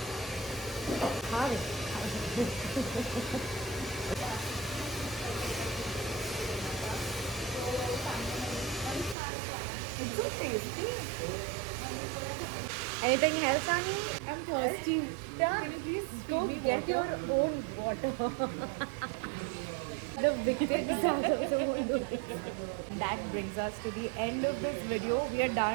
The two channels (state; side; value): drops out; left; at 9.2 s